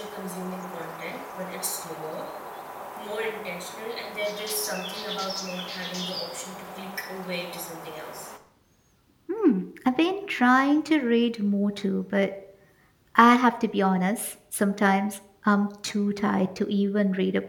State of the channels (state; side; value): identical; both; correlation 1.00